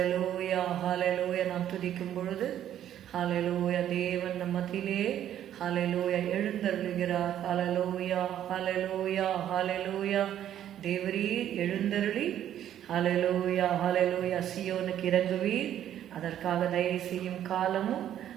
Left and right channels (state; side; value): quieter; left; 11.0 dB